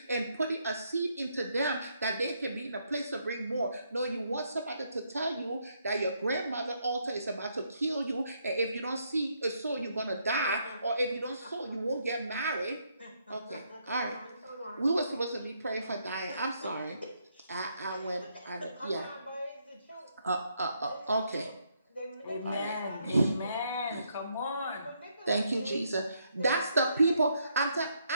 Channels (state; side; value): inverted; both; correlation -0.75